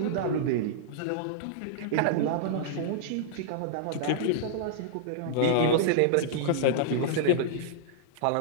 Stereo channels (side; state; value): both; different; correlation -0.02